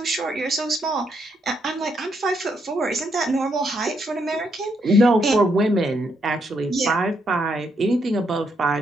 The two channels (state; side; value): normal; both; correlation 0.77